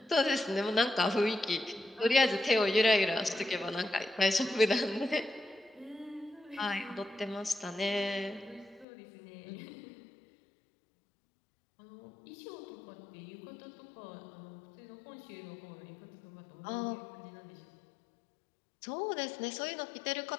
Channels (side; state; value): right; drops out; at 8.8 s